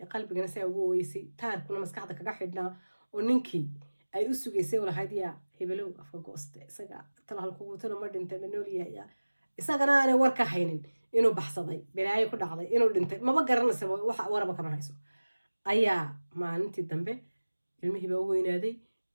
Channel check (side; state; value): both; inverted; correlation -1.00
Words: qalbigana saa ugu oweysay taarkuna maskaxda kaga xidhnaa oo ninkii ay u sugaysay walahayd yaa hebelow afka gooste isaga tala halkugu tala ma dhintay ma nool yahay isagana aanay war ka haynin inuu baxsaday balaayo ku dhacday inuu dhintay maba garanaysa waxa waraba kama hayso ayaa maalintii dambe ilmihii baa u weynaaday